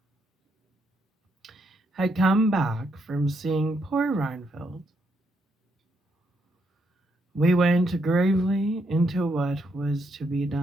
had come back from seeing poor Reinfeldt, we went gravely into what was to be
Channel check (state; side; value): normal; both; correlation 0.77